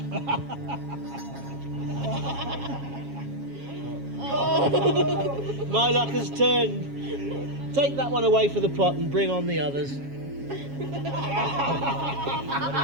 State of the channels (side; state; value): left; late; 7.3 ms